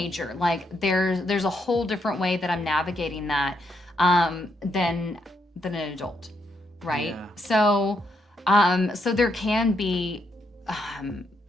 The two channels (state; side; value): normal; both; correlation 0.77